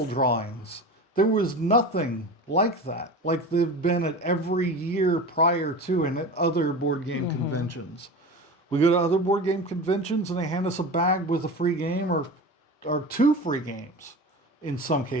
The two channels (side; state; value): both; normal; correlation 0.31